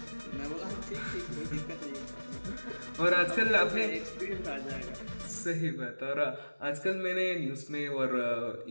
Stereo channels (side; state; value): both; inverted; correlation -1.00